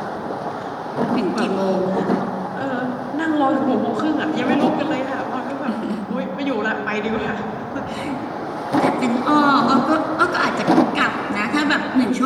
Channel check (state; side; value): identical; both; correlation 1.00